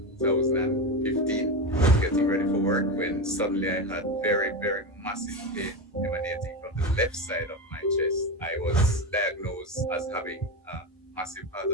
2015, getting ready for work when suddenly I had very, very massive pain emanating from the left side of my chest. I was diagnosed as having a massive heart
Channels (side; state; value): both; normal; correlation 0.18